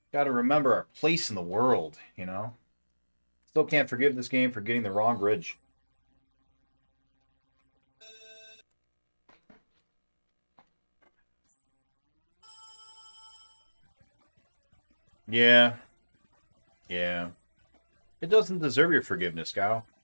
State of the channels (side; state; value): both; inverted; correlation -1.00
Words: remember our place in the world, you know? Still can't forgive this game for getting the wrong bridge. Yeah. Yeah. It doesn't deserve your forgiveness, Gao.